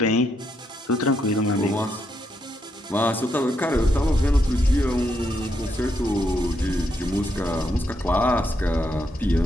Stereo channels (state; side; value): normal; both; correlation 0.79